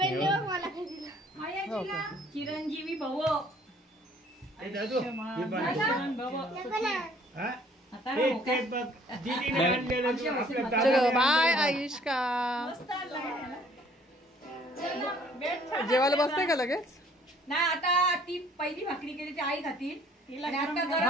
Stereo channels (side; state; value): both; normal; correlation 0.58